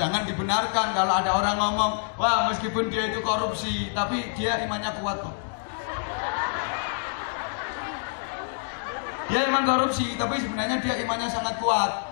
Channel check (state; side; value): silent; right; digital silence